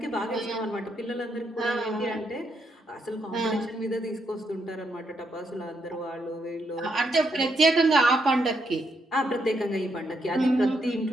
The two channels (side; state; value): both; normal; correlation 0.78